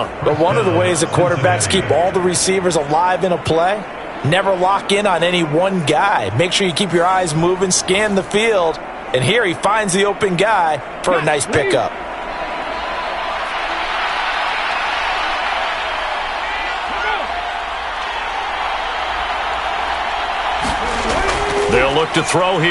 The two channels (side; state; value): both; identical; correlation 1.00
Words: But one of the ways that quarterbacks keep all the receivers alive in a play, never lock in on any one guy. Make sure you keep your eyes moving, scan the field. And here he finds the open guy for a nice pickup. They'll look to throw